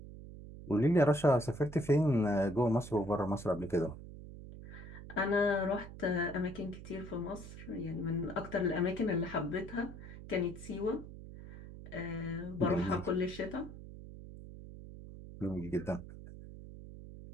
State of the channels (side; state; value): right; noise; hum, 13 dB below the sound